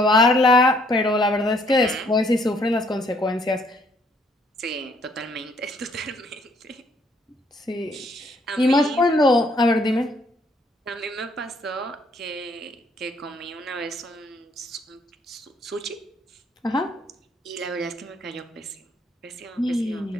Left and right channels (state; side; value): normal; both; correlation 0.66